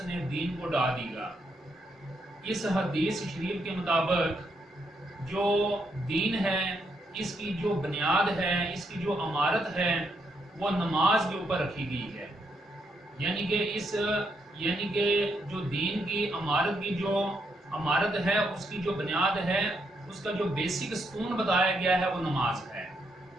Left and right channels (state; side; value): normal; both; correlation 0.78